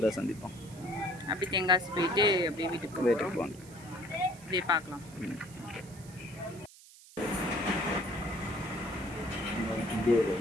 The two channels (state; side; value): noise; right; hiss, 21 dB below the sound